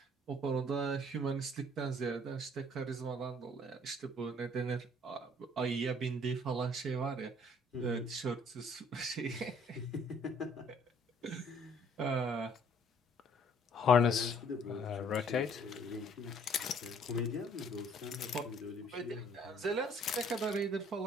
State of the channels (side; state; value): both; normal; correlation 0.59